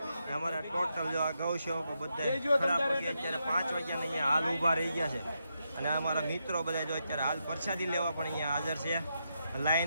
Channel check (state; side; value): inverted; both; correlation -0.83